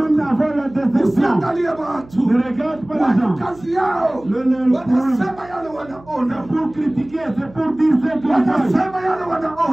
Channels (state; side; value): noise; right; hum, 23 dB below the sound